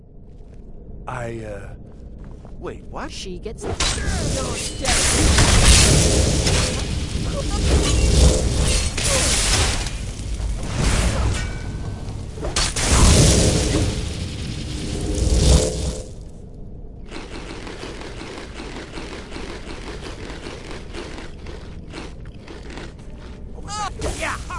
Wait, what? She gets... You're dead.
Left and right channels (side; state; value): both; identical; correlation 1.00